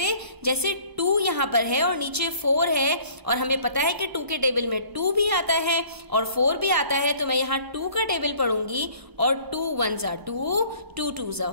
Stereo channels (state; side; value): late; left; 1.0 ms